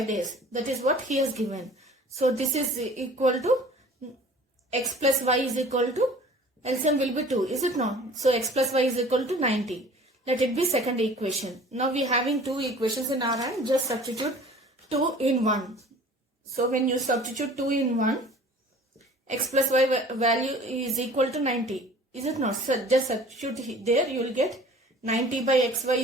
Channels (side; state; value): both; normal; correlation 0.47